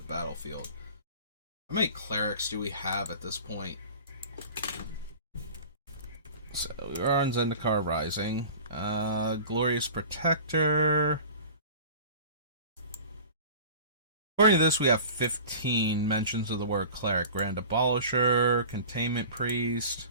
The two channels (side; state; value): both; inverted; correlation -0.39